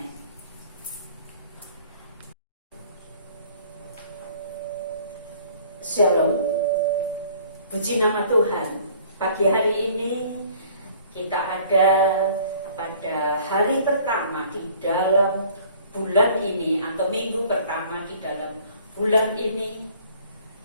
Shalom. Puji nama Tuhan. Pagi hari ini kita ada pada hari pertama di dalam bulan ini, atau minggu pertama di dalam bulan ini.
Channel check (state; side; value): inverted; both; correlation -0.54